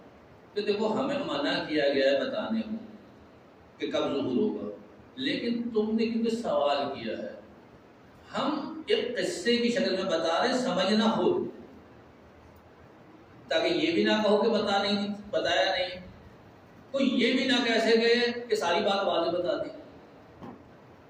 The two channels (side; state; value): both; identical; correlation 1.00